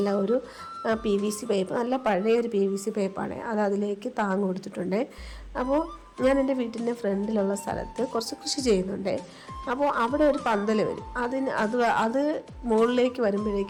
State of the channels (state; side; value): identical; both; correlation 1.00